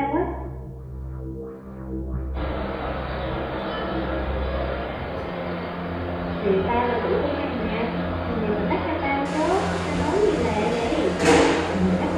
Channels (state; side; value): identical; both; correlation 1.00